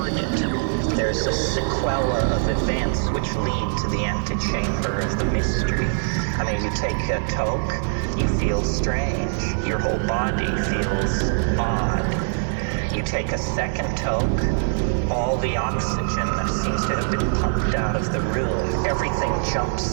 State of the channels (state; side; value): silent; left; digital silence